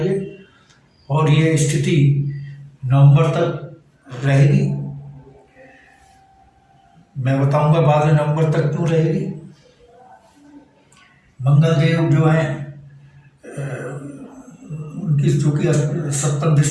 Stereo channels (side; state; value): both; identical; correlation 1.00